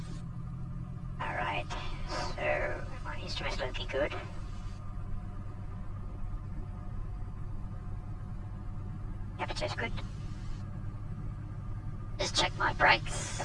Alright, so my instrument's looking good. Temperature's good. Just check my brakes.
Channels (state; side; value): identical; both; correlation 1.00